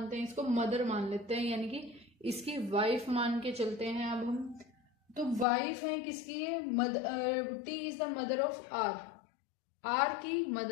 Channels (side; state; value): right; drops out; at 5.5 s